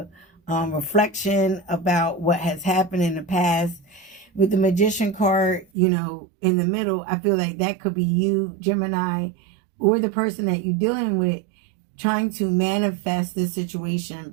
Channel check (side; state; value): left; drops out; at 5.7 s